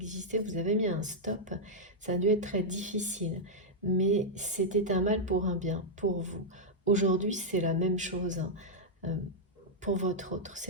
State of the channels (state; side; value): normal; both; correlation -0.05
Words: vous avez mis un stop, ça a dû être très difficile. Mais c'était un mal pour un bien, pour vous. Aujourd'hui, c'est la même chose, hein, pour votre autre.